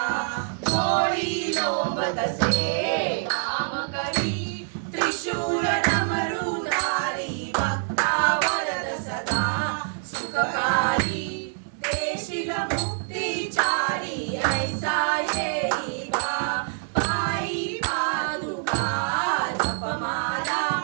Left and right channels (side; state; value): left; silent; 61 dB below the other